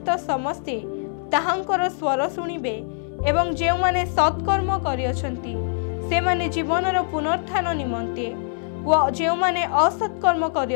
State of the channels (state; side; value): silent; right; digital silence